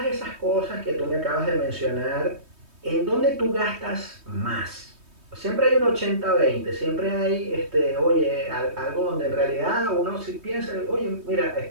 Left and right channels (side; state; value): left; late; 3.2 ms